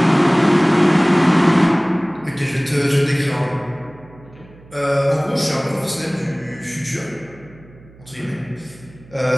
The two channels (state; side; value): noise; right; hum, 24 dB below the sound